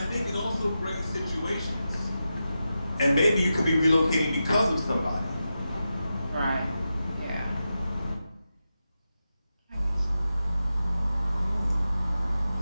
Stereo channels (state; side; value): inverted; both; correlation -0.91